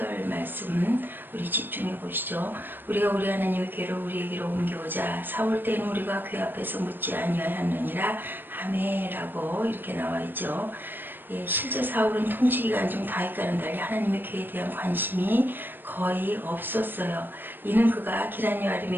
말씀 우리 집중해 보시죠. 우리가 우리 하나님의 궤를 우리에게로 옮겨오자 사울 때는 우리가 그 앞에서 묻지 아니하였느니라. 아멘이라고 이렇게 나와 있죠. 실제 사울은 통치기간 중 다윗과는 달리 하나님의 궤에 대한 관심이 거의 없었어요. 이는 그가 기럇여아림에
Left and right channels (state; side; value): late; left; 0.095 ms